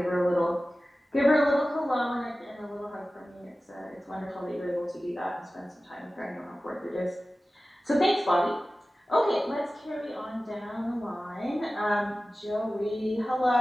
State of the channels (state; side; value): normal; both; correlation 0.96